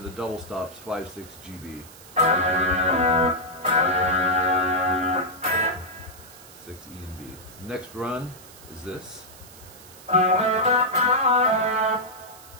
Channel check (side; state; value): right; noise; hiss, 20 dB below the sound